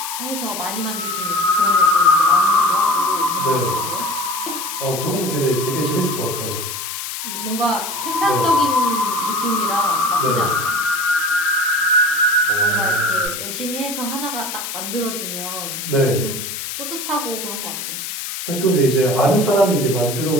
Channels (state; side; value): noise; left; hiss, 6 dB below the sound